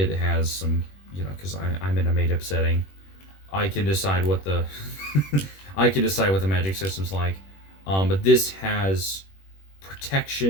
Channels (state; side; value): late; right; 21 ms